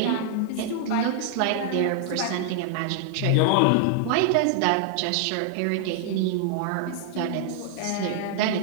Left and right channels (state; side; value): different; both; correlation -0.01